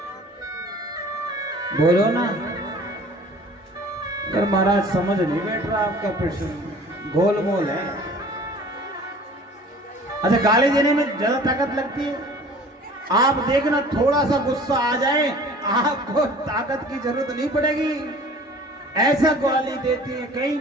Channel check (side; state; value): both; normal; correlation 0.47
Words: बोलो ना। अगर महाराज समझ नहीं बैठ रहा आपका प्रश्न, गोलमोल है। अच्छा गाली देने में ज्यादा ताकत लगती है? आप देखना थोड़ा सा गुस्सा आ जाए आपको ताकत की जरूरत नहीं पड़ेगी, ऐसा गाली देती है। कई